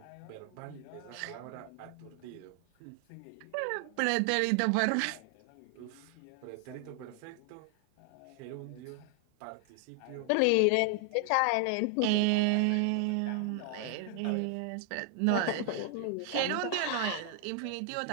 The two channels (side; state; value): both; different; correlation 0.00